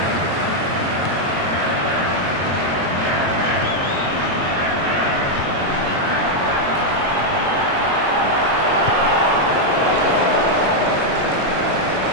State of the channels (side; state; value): left; late; 22 ms